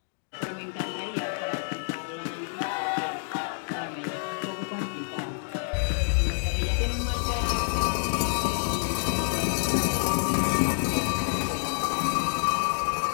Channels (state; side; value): silent; right; digital silence